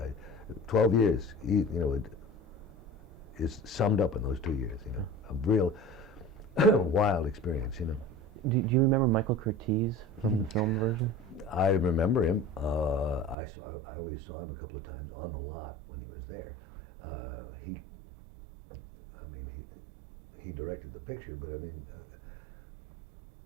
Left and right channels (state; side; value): drops out; left; at 13.4 s